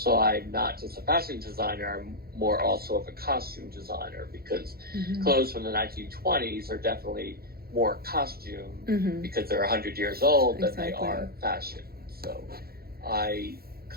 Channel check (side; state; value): left; late; 0.44 ms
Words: I'm not just a fashion designer, I'm more also of a costume designer, because clothes from the 1920s are definitely more costume because they're 100 years old than they are fashion. So I